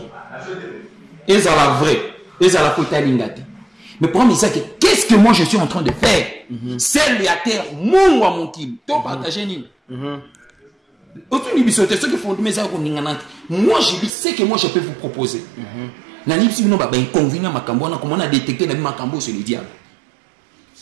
Et ça la vraie, et ça la côté lingati. Mais pour moi ça qu'est-ce que moi je suis en train de faire? C'est la terre mon wa mon kim. To partager nini. Autour du bisoté ceux qui font mes ça moi je dis c'est que moi je peux vous proposer. Nanipsi non ba inconvénient makambo na comment on a détecté la makambo sur le diable.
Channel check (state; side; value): drops out; left; at 14.1 s